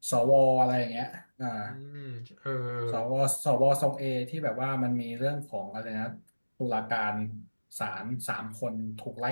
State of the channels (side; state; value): both; inverted; correlation -1.00